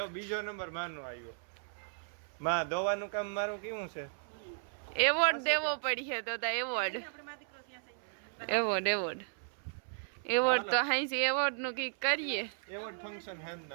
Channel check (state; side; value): silent; left; 54 dB below the other